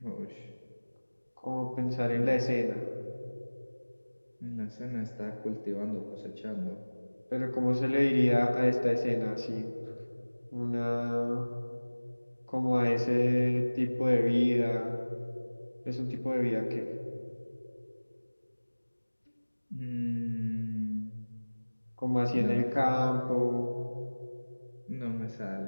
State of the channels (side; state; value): both; inverted; correlation -1.00